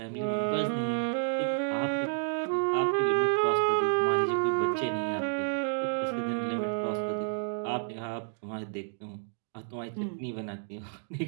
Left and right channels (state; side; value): silent; left; digital silence